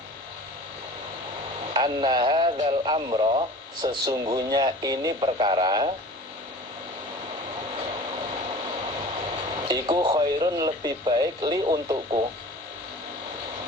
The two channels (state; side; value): normal; both; correlation 0.41